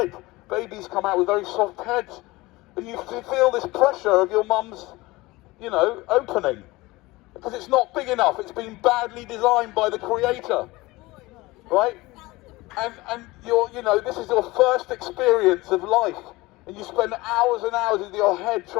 Babies come out with very soft heads, and you feel this pressure of your mum's, opening, because it's not big enough. It's been badly designed by the creator, right? And this is your first experience of life, and you spend hours and hours with your head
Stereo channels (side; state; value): right; quieter; 20.9 dB